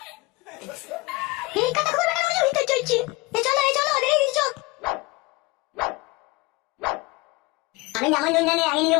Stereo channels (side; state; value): right; quieter; 23.4 dB